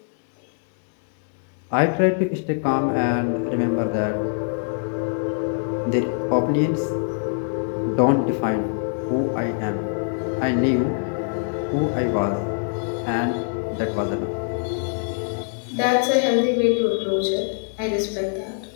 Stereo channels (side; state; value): right; silent; 63 dB below the other